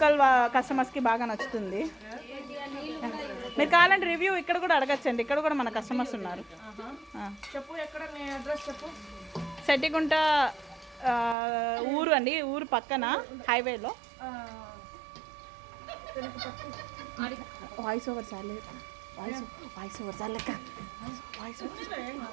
కస్టమర్స్కి బాగా నచ్చుతుంది. మీరు కావాలంటే రివ్యూ ఇక్కడ కూడా అడగచ్చండి, ఇక్కడ కూడా మన కస్టమర్స్ ఉన్నారు. చెప్పు, ఎక్కడ నీ అడ్రస్ చెప్పు. సెట్టిగుంట ఊరు అండి, ఊరు పక్కన హైవేలో. వాయిస్ ఓవర్ చాలే, వాయిస్ ఓవర్ చాలక,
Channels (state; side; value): drops out; left; at 11.4 s